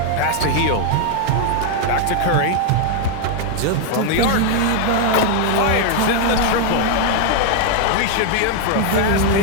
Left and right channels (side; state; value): both; different; correlation 0.00